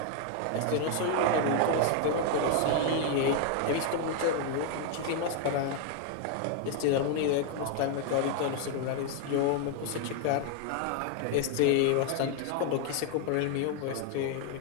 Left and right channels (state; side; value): different; both; correlation 0.00